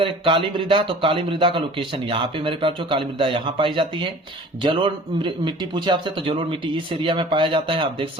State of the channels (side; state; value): both; normal; correlation 0.45